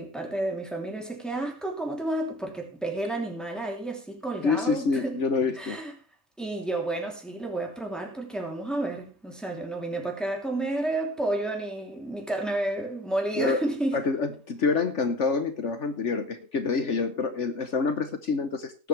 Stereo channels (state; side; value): normal; both; correlation 0.45